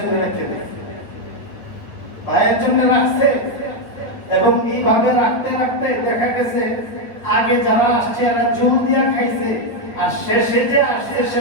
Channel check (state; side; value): late; right; 9.1 ms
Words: রেখে দেয়, ভাইয়ের জন্য রাখছে। এবং এইভাবে রাখতে রাখতে দেখা গেছে আগে যারা আসছে এরা জোর দিয়া খাইছে, আর শেষে যে আসছে সে